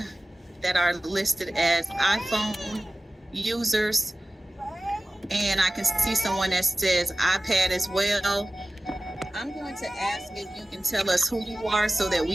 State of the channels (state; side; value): normal; both; correlation 0.97